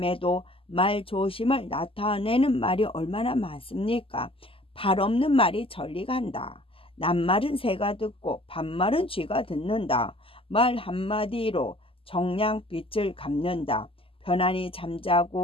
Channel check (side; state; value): right; late; 0.26 ms